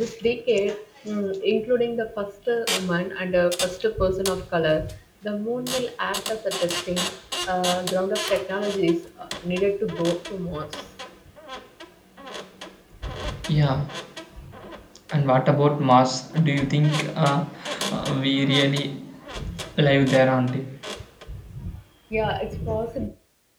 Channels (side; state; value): both; identical; correlation 1.00